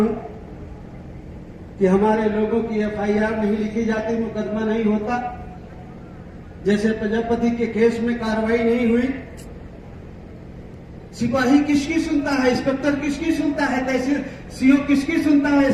कि हमारे लोगों की एफआईआर नहीं लिखी जाती, मुकदमा नहीं होता। जैसे प्रजापति के केस में कार्रवाई नहीं हुई, सिपाही किसकी सुनता है, इंस्पेक्टर किसकी सुनता है, तहसील सीओ किसकी सुनता है,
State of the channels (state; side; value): identical; both; correlation 1.00